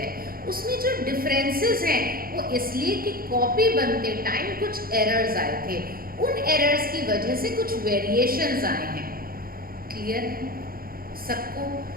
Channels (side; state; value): left; late; 0.42 ms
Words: है उसमें जो डिफरेंसेस हैं वो इसलिए कि कॉपी बनते टाइम कुछ एरर्स आए थे, उन एरर्स की वजह से कुछ वेरिएशंस आए हैं। क्लियर है सबको?